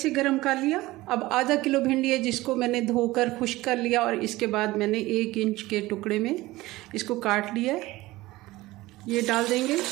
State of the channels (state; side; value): quieter; left; 18.8 dB